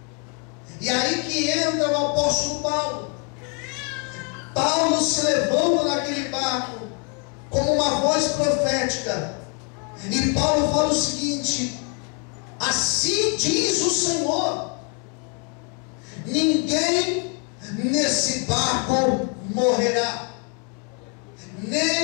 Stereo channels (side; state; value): right; quieter; 36.9 dB